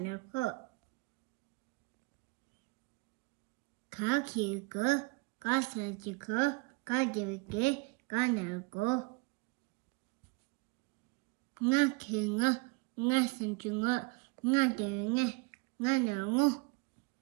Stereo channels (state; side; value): quieter; left; 27.4 dB